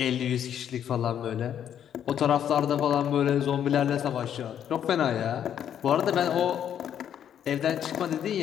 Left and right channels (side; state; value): right; quieter; 9.5 dB